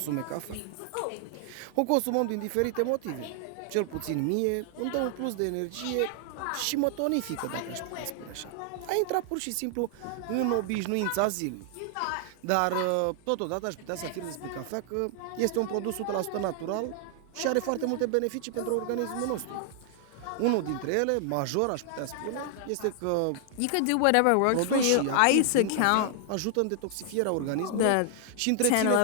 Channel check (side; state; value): both; different; correlation 0.00